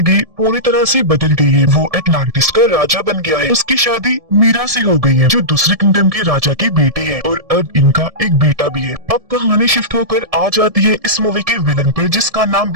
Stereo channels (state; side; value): late; left; 1.7 ms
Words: पूरी तरह से बदल गई है। वो एटलांटिस का राजा बन गया है। उसकी शादी मीरा से हो गई है जो दूसरे किंगडम के राजा की बेटी है और अब इनका एक बेटा भी है। अब कहानी शिफ्ट होकर आ जाती है इस मूवी के विलन पर जिसका नाम